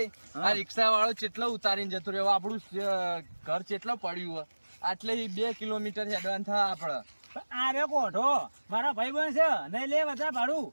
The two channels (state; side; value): inverted; both; correlation -1.00